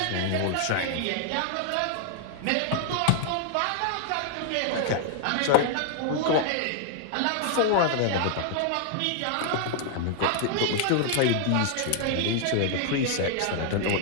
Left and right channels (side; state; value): both; different; correlation 0.00